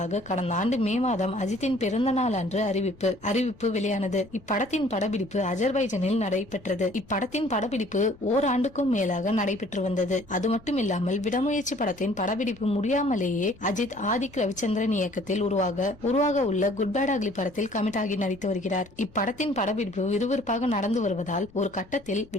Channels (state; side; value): noise; left; rumble, 24 dB below the sound